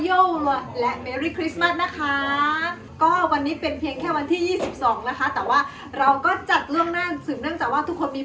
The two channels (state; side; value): identical; both; correlation 1.00